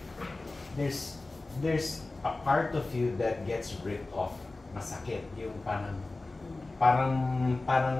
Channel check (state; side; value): quieter; right; 3.2 dB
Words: there's a part of you that gets ripped off. Masakit. Yung